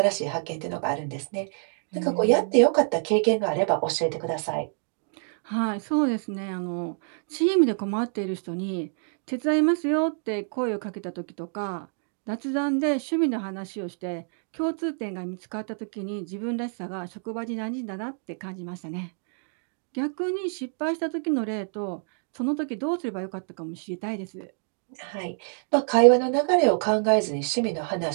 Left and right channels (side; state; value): left; silent; 60 dB below the other